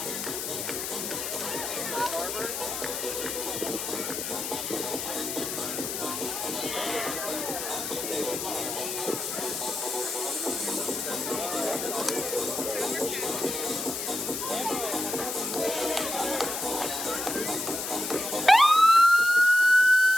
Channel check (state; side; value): noise; left; hiss, 4 dB below the sound